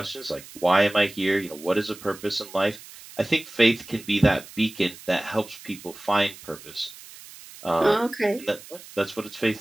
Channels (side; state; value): right; noise; hiss, 18 dB below the sound